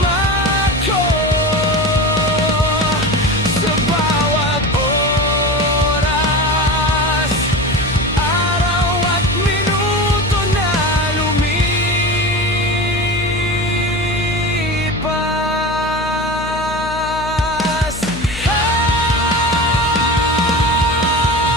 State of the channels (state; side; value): noise; left; hum, 11 dB below the sound